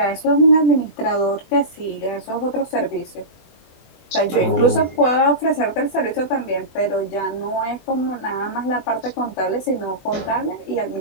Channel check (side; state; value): right; late; 24 ms